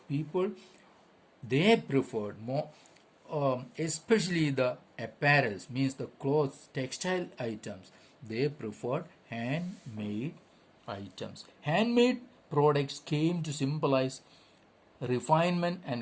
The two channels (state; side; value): identical; both; correlation 1.00